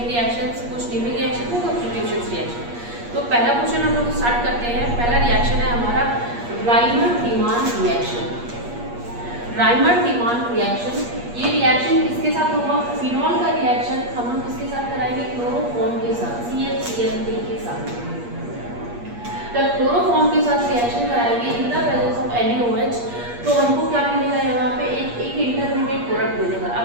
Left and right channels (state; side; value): late; left; 8.4 ms